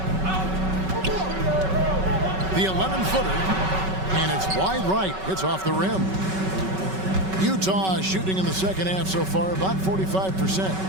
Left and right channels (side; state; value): left; late; 5.3 ms